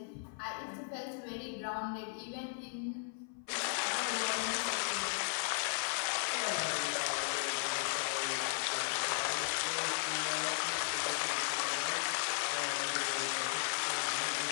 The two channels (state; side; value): silent; right; 54 dB below the other